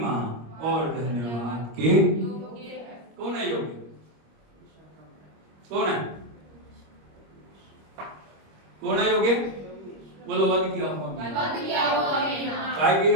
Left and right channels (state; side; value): late; left; 25 ms